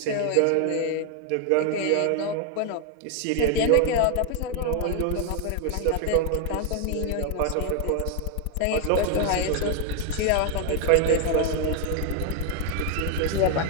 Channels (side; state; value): both; different; correlation 0.00